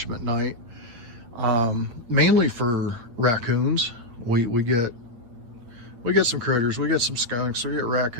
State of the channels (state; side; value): late; left; 8.9 ms